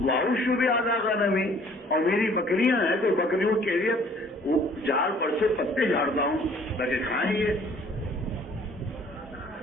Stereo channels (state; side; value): normal; both; correlation 0.56